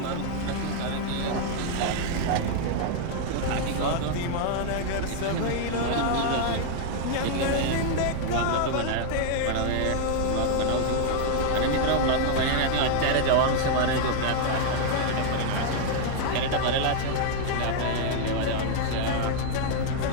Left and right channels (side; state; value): both; different; correlation 0.00